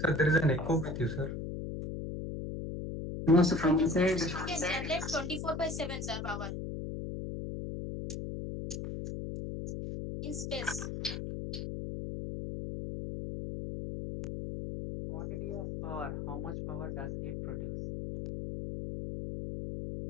there is an echo with you, sir. No, so from inside. It can generate 24/7, sir, power. In space. Quantity of power, how much power does it produce?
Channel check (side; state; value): left; noise; hum, 5 dB below the sound